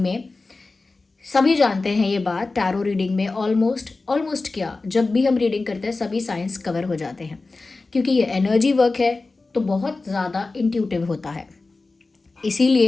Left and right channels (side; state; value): right; quieter; 3.6 dB